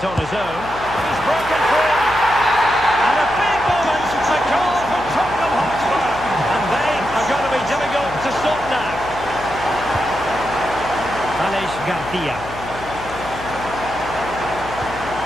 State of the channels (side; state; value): left; noise; hum, 14 dB below the sound